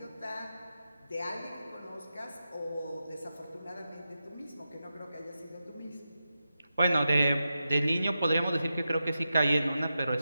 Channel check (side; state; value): both; inverted; correlation -0.91